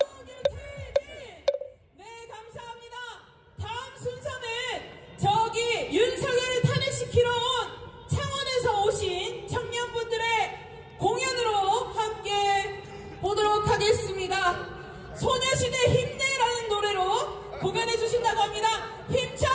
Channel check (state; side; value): identical; both; correlation 1.00